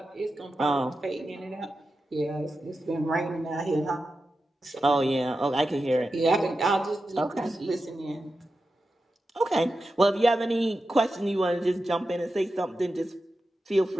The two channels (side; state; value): both; normal; correlation 0.91